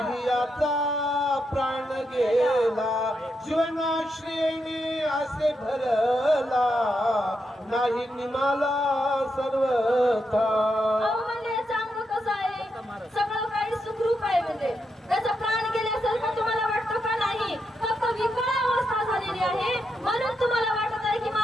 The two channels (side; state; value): both; normal; correlation 0.83